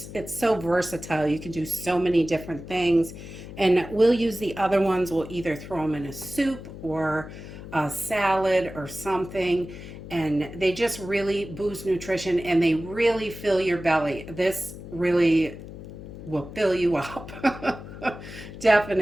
it's so versatile. You can do so many different things. And we'll use the other ones. We'll either throw them in a soup or a salad or something. And they just really boost nutrition and they really fill your belly. This really will fill you up.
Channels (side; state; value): left; noise; hum, 13 dB below the sound